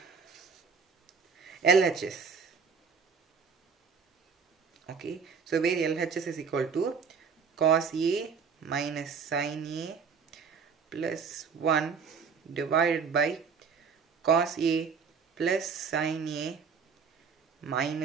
LHS. Okay, so where LHS is equal to cos A minus sin A plus 1 divided by cos A plus sin A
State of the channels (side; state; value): left; quieter; 5.8 dB